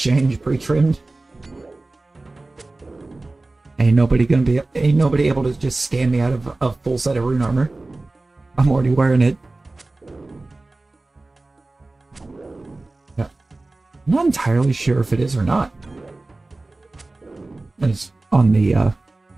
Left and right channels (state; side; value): quieter; left; 3.1 dB